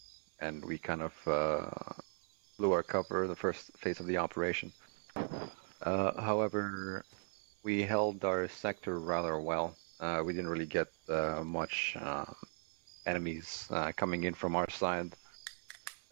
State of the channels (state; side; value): silent; left; 52 dB below the other